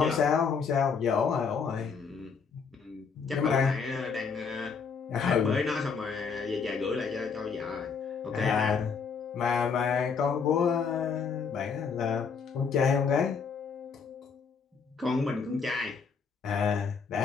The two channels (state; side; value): quieter; right; 5.7 dB